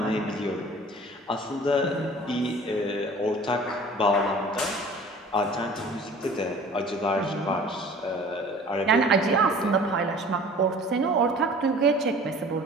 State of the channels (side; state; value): both; normal; correlation 0.46